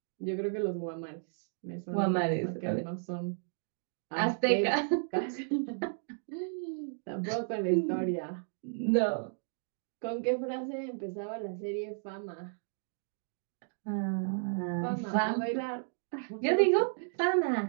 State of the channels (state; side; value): silent; left; digital silence